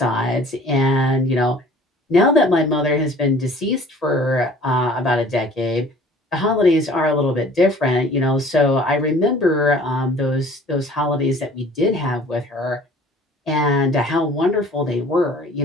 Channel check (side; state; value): both; normal; correlation 0.50